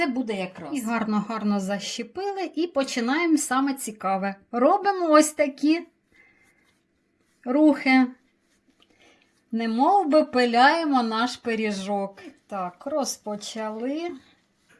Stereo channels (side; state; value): both; identical; correlation 1.00